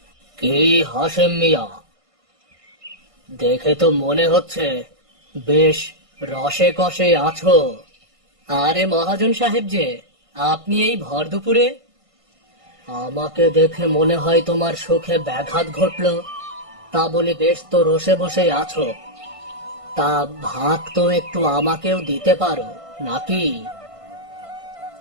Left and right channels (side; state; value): left; late; 1.5 ms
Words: কি হাসেম মিয়া, দেখে তো মনে হচ্ছে বেশ রসে কষে আছো। আরে মহাজন সাহেব যে, আপনি এই ভর দুপুরে? আমাকে দেখে মনে হয় তোমার সুখে ব্যাঘাত ঘটলো। তা বলে বেশ তো রসে বসে আছো। তা ভাগ তো একটু আমাকেও দিতে পারো নাকি?